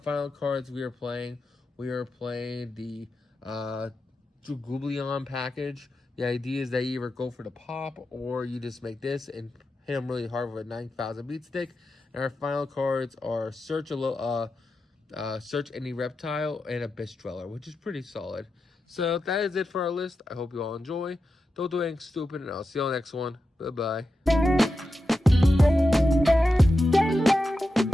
cards, we are playing the Dragooblion package. The idea is that you either go for the pop or you just make this and hit them really hard with a 9000 beat stick. And our final cards are Search Any Reptile and Abyss Dweller, which is pretty solid. So that is it for our list. I hope you all enjoy. Don't do anything stupid, and I'll see you on the next one. Bye-bye.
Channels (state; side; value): normal; both; correlation 0.90